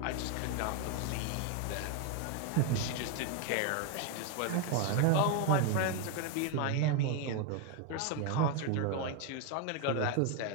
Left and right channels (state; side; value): different; both; correlation 0.01